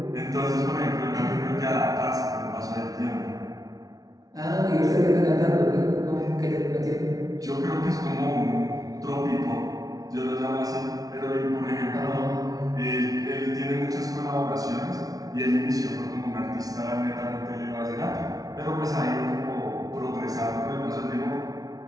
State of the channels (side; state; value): left; late; 0.18 ms